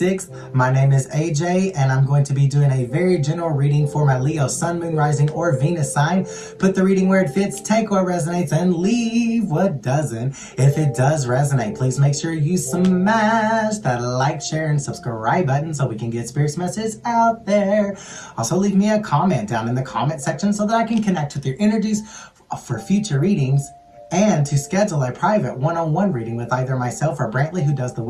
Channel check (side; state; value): both; identical; correlation 1.00